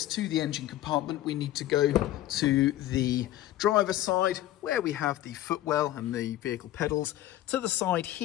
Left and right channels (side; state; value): right; quieter; 13.9 dB